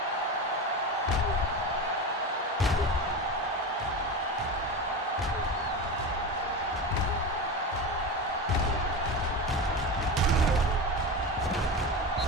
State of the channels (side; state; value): both; normal; correlation 0.23